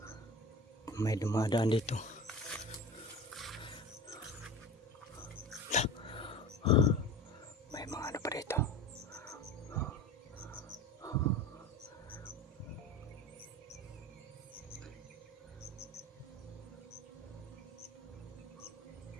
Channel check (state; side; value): normal; both; correlation 0.33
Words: May dumadaan dito.